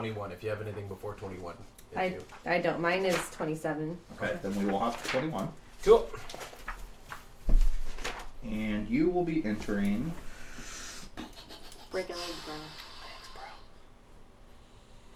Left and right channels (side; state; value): both; identical; correlation 1.00